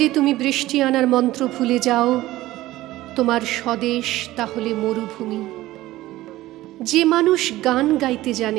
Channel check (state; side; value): quieter; left; 16.5 dB